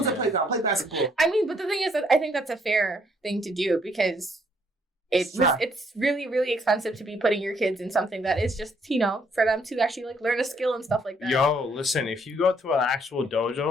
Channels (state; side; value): normal; both; correlation 0.68